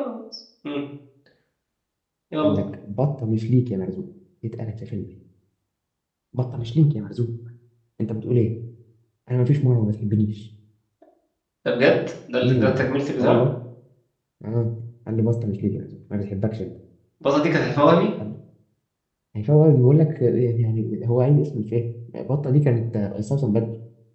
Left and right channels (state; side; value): identical; both; correlation 1.00